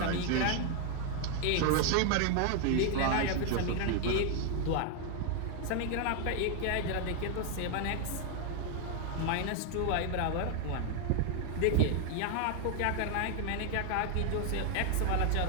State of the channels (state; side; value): different; both; correlation 0.00